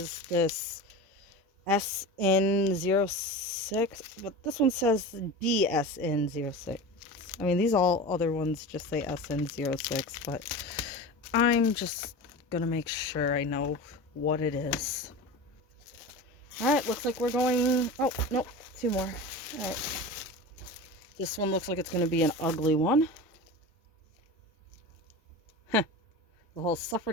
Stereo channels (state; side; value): normal; both; correlation 0.30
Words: this SN06, but this one says DSN06. I mean, these all other ones just say SN06, but I'm just gonna make sure I know what it is. Alright, looks like we're going... Oh, nope, 2 more. Alright. This one looks like it's gonna be an ugly one. Heh. The whole